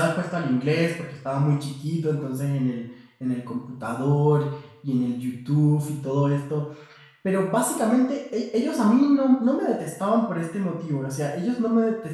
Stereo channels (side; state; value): both; identical; correlation 1.00